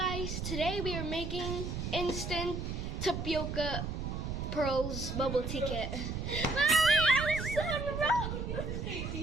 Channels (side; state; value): right; noise; rumble, 4 dB below the sound